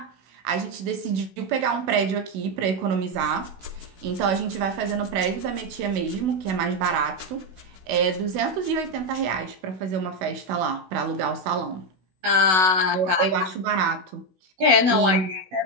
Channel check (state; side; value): late; left; 16 ms